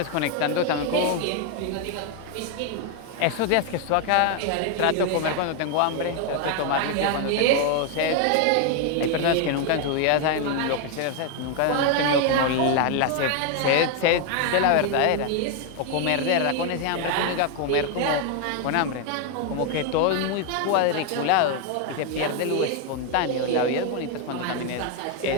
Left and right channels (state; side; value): different; both; correlation 0.01